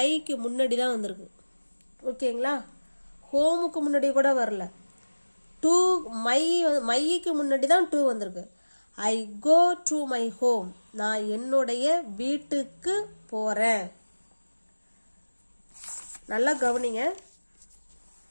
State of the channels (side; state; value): both; inverted; correlation -1.00